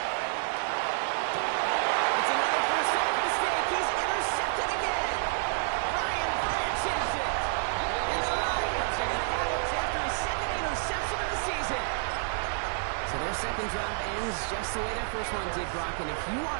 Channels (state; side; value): silent; left; 58 dB below the other